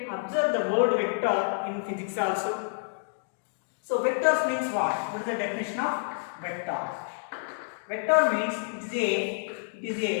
observe the word vector in physics also. So, vectors means what? What is the definition of vector? Vector means it is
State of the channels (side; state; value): right; silent; digital silence